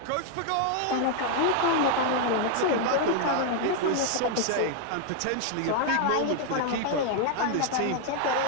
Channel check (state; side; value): different; both; correlation 0.00